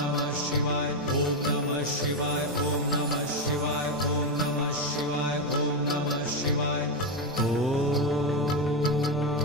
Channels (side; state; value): both; normal; correlation 0.08